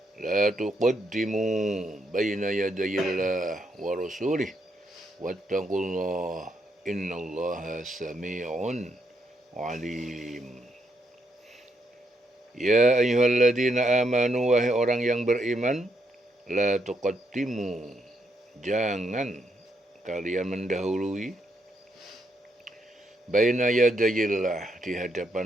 la tuqaddimu baina yadayillah wa rasulih wattaqullah innallaha sami'un alim. Ya ayyuhalladzina amanu, wahai orang yang beriman, la tuqaddimu, jangan kalian mendahului, baina yadayillah, di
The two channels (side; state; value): both; normal; correlation 0.77